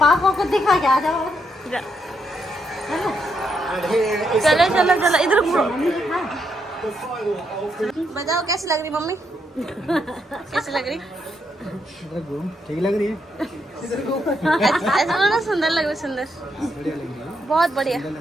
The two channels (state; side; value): normal; both; correlation 0.78